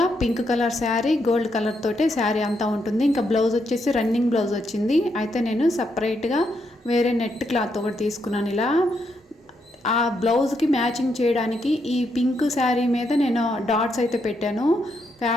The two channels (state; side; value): normal; both; correlation 0.79